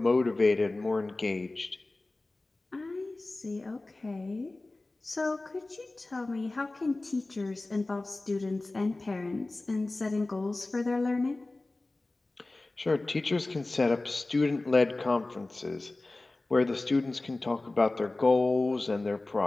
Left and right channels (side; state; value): right; quieter; 3.0 dB